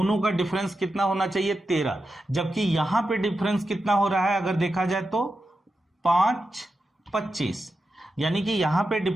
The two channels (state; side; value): normal; both; correlation 0.89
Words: का डिफरेंस कितना होना चाहिए? 13, जबकि यहां पे डिफरेंस कितना हो रहा है अगर देखा जाए तो 5/25, यानी कि यहां पे